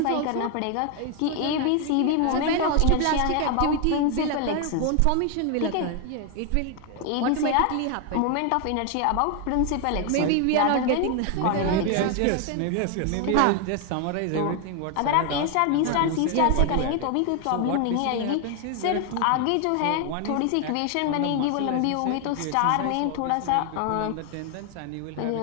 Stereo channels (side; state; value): both; different; correlation 0.01